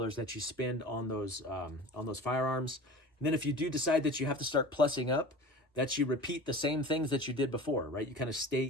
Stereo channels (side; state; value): both; normal; correlation 0.37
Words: that you spend on those firearms. And then if you do decide that you have to start plussing up, that you repeat the same things that you did before, right? You kind of stay